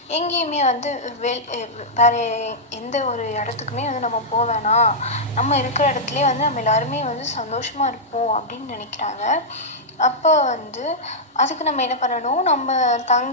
எங்கேயுமே வேறு எந்த ஒரு இடத்துக்குமே நம்ம போக வேணாம். நம்ம இருக்கிற இடத்துலையே நம்ம எல்லாருமே சந்தோஷமாக இருப்போம் அப்படின்னு நினைக்கிறாங்க. அப்போ அதுக்கு நம்ம என்ன பண்ணணும், நம்ம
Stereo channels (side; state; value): both; normal; correlation -0.09